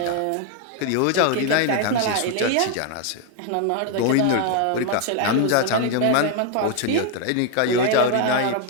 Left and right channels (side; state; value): both; different; correlation 0.00